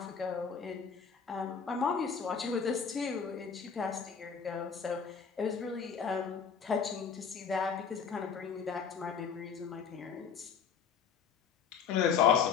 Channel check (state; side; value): quieter; right; 6.5 dB